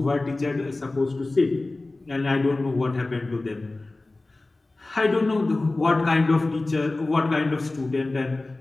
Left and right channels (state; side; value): quieter; right; 3.1 dB